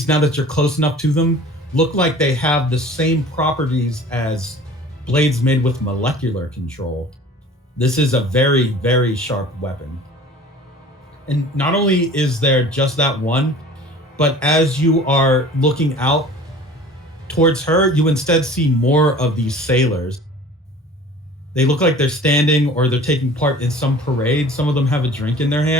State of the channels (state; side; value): normal; both; correlation 0.44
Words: now that you're close enough to them, look like they have the same properties as blades made with molecular control. This is a very, very sharp weapon. And not only is there just that one, but as you are looking out towards her, you instead see more of these sailors. They look like they're standing or they're taking part in some parade. Some of them have a drink in their